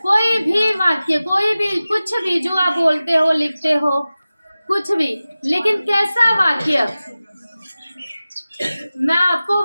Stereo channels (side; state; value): both; inverted; correlation -0.96